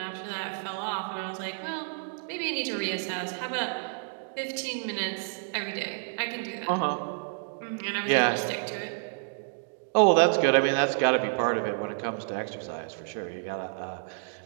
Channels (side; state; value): left; silent; digital silence